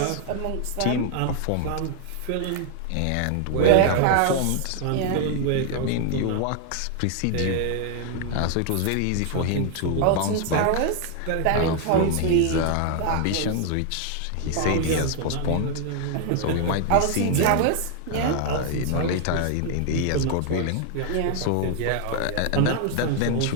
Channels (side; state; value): both; different; correlation 0.00